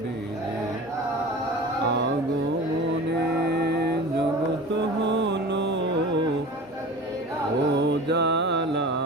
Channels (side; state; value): both; normal; correlation 0.36